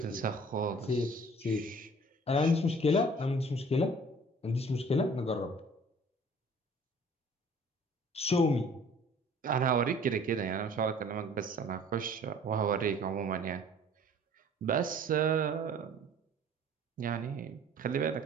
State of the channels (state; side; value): normal; both; correlation 0.50